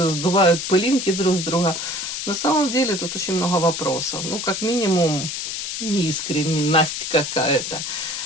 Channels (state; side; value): noise; left; hiss, 4 dB below the sound